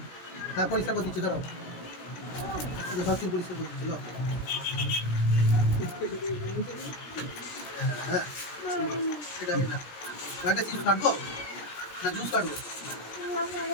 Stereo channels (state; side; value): late; right; 17 ms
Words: হ্যাঁ পরিষ্কার করে দিচ্ছি, ধরো সব চুল পরিষ্কার করে দিচ্ছিল। হ্যাঁ এটা একটা চিজ কাটবো না জুস কাটবো?